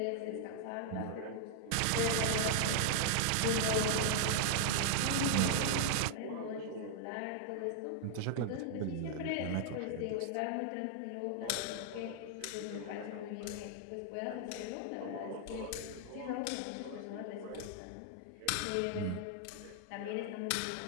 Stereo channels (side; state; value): both; different; correlation -0.01